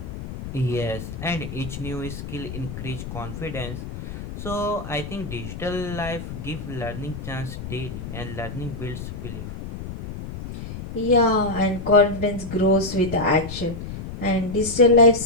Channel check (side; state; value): left; noise; rumble, 9 dB below the sound